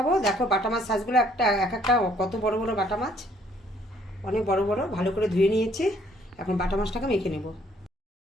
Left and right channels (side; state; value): both; normal; correlation 0.63